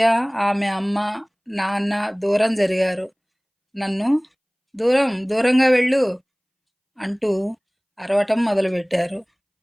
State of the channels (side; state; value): both; identical; correlation 1.00